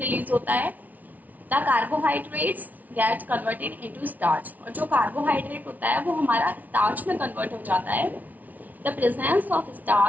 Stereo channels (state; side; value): late; left; 0.076 ms